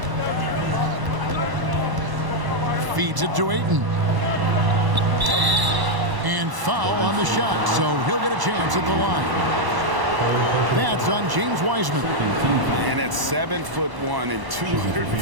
Feeds it to Ayton. And foul on the shot, so he'll get a chance at the line. That's on James Wiseman. And at 7'1" and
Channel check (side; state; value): left; late; 1.0 ms